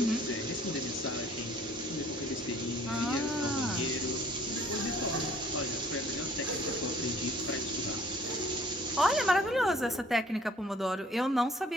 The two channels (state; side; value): normal; both; correlation 0.55